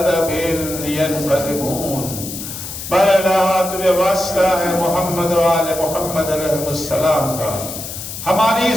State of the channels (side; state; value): left; noise; hiss, 9 dB below the sound